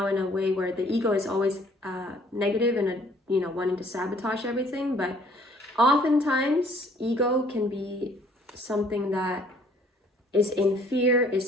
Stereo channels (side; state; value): both; normal; correlation 0.59